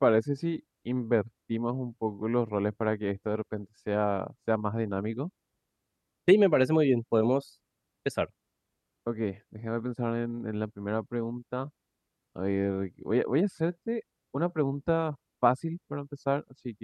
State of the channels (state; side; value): identical; both; correlation 1.00